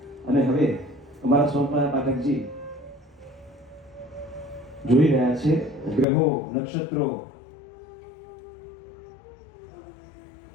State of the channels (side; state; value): right; drops out; at 6.1 s